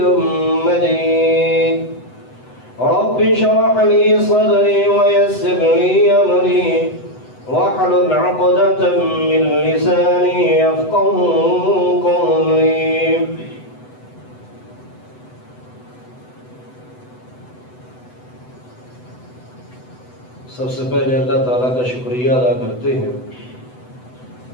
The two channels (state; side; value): late; right; 8.0 ms